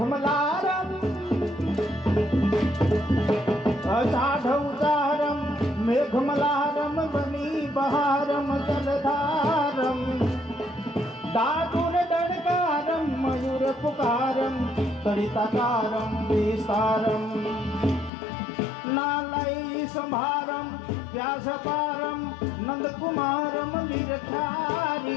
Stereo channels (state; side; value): drops out; right; at 18.1 s